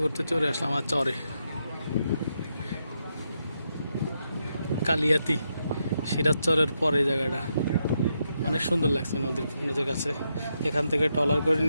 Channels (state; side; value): inverted; both; correlation -0.82